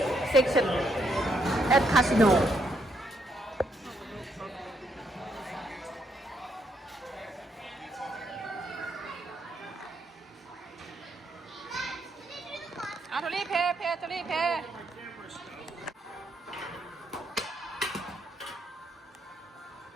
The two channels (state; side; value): normal; both; correlation 0.76